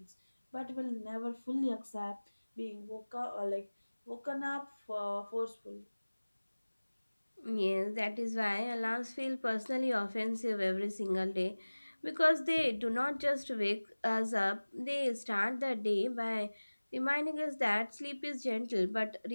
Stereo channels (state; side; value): inverted; both; correlation -1.00